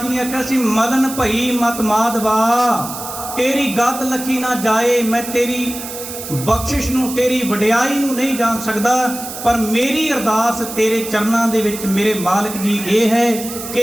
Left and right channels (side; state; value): right; noise; hiss, 10 dB below the sound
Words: ਜੀ ਨੇ ਆਖਿਆ ਸੀ, ਮਲਨ ਭਈ ਮਤ ਮਾਧਵਾ, ਤੇਰੀ ਗਤ ਲਖੀ ਨਾ ਜਾਏ। ਮੈਂ ਤੇਰੀ ਬਖਸ਼ਿਸ਼ ਨੂੰ, ਤੇਰੀ ਵਡਿਆਈ ਨੂੰ ਨਹੀਂ ਜਾਣ ਸਕਦਾ, ਪਰ ਮੇਰੀ ਅਰਦਾਸ ਤੇਰੇ ਚਰਨਾਂ ਦੇ ਵਿੱਚ ਮੇਰੇ ਮਾਲਕ ਜੀ ਇਹ ਹੈ